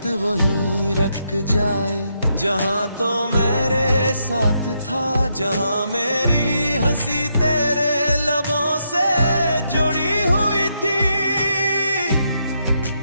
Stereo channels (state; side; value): inverted; both; correlation -0.79